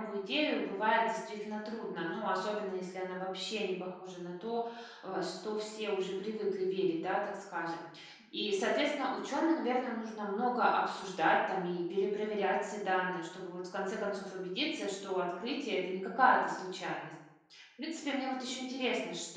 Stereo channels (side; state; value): both; identical; correlation 1.00